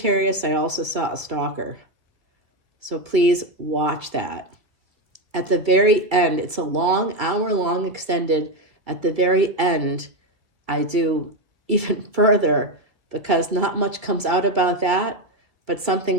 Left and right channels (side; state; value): left; late; 2.3 ms